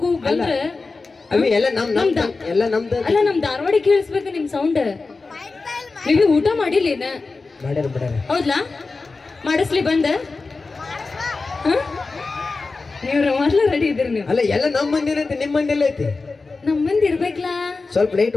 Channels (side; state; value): right; quieter; 3.9 dB